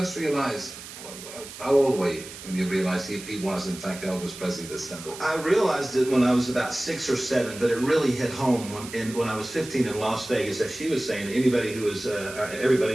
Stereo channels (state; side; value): noise; right; hiss, 13 dB below the sound